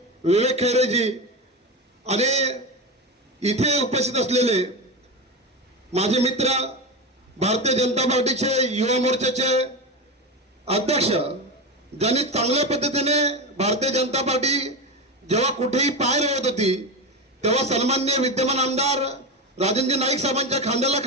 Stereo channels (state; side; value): normal; both; correlation 0.19